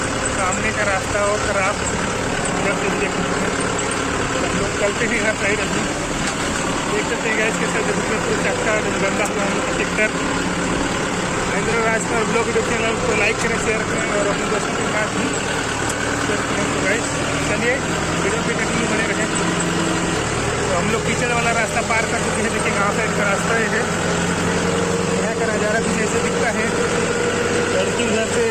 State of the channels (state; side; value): identical; both; correlation 1.00